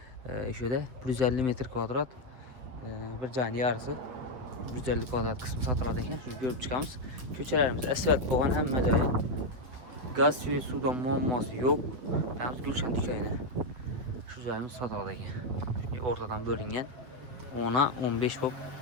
şöyle 150 metre kvadrat bir canı yarısı 150 kvadrat kısmı satılады ekan. Şunu görüp çıkamız. Köçelerimiz asfalt boğan hem joyi. Gaz suyu sudan muamması yok. Yalnız Gülşen dükkanı. Şu joyimiz satılады ekan. Ortadan bölüngen 10'a 15 bop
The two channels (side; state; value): left; late; 8.4 ms